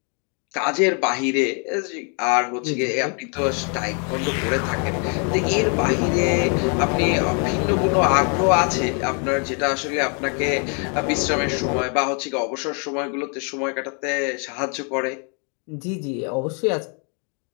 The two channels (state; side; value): quieter; right; 38.3 dB